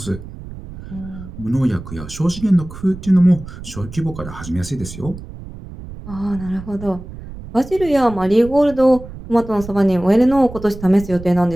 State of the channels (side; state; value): right; noise; rumble, 14 dB below the sound